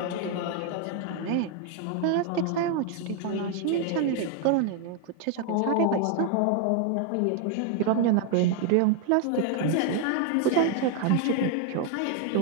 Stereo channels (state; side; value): different; both; correlation 0.00